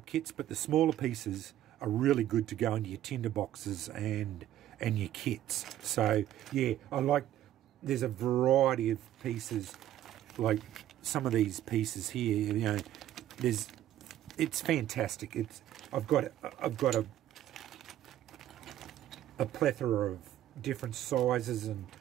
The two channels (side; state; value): left; quieter; 12.5 dB